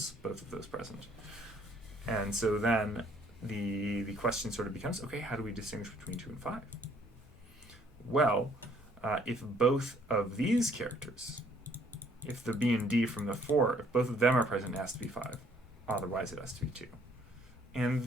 of those present. And so then the question sort of becomes, okay, how do we distinguish between 2 and 5? Well, if both of these characters, if the B and D from the 4, if both of them are present, it has to be 5. Otherwise, it has to be 2.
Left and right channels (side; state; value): both; normal; correlation 0.63